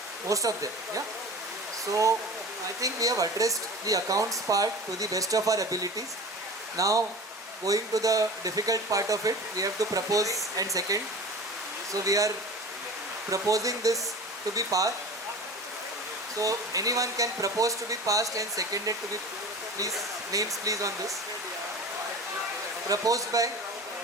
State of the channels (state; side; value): normal; both; correlation 0.36